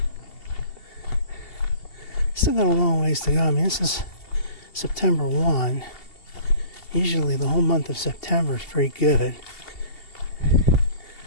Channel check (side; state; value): right; late; 2.7 ms